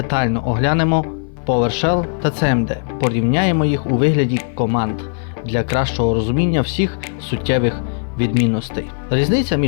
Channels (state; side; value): silent; right; 58 dB below the other